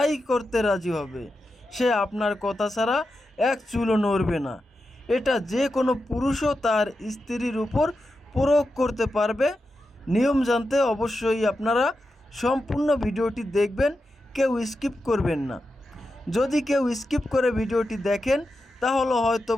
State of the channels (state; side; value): normal; both; correlation 0.89